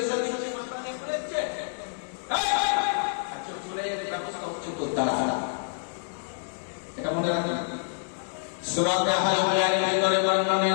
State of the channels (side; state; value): right; silent; digital silence